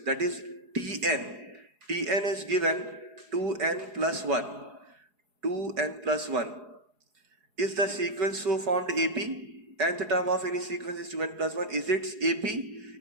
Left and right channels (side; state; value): left; late; 4.8 ms